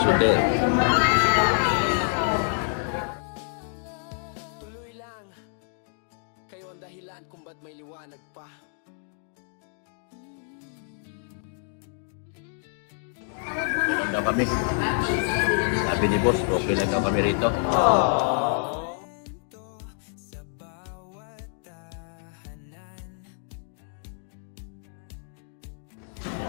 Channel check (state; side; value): silent; right; digital silence